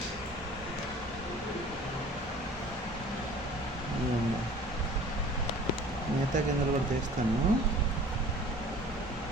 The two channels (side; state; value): both; normal; correlation 0.46